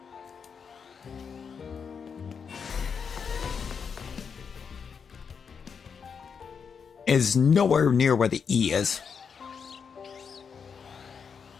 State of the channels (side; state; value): right; quieter; 6.3 dB